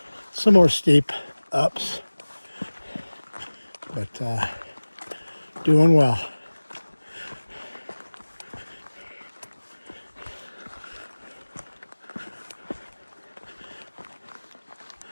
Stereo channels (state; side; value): inverted; both; correlation -1.00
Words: some more steep ups, but doing well.